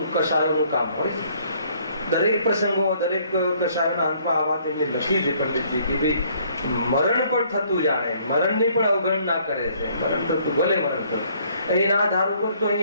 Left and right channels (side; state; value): both; inverted; correlation -0.63